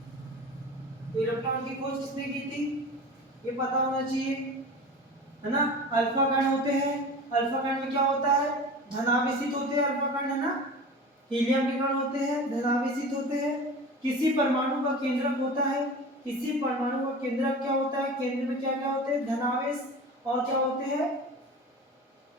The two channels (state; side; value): normal; both; correlation 0.34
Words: तो इलेक्ट्रॉन की खोज किसने की थी ये पता होना चाहिए, है ना। अल्फा कण होते हैं, अल्फा कण में क्या होता है, धनावेशित होते हैं अल्फा कण, है ना। हीलियम के कण होते हैं, धनावेशित होते हैं। किसी परमाणु का केंद्रक होता है, किसी परमाणु का केंद्रक क्या होता है, केंद्र में क्या क्या होते हैं, धनावेश और क्या होते हैं,